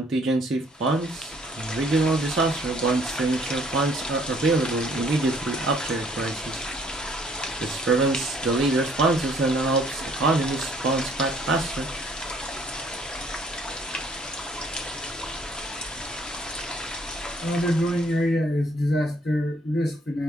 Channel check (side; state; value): both; normal; correlation 0.62